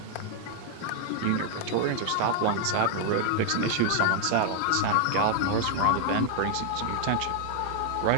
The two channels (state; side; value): different; both; correlation 0.00